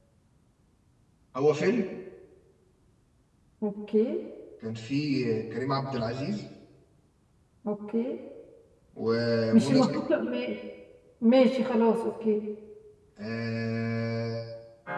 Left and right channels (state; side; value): identical; both; correlation 1.00